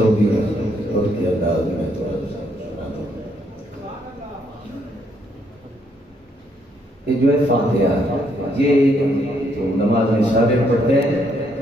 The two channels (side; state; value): both; normal; correlation 0.72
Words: और के अंदाज में थोड़ा सुनाता हूँ। ये जो है फातिहा, ये जो नमाज में सारे पढ़ते हैं,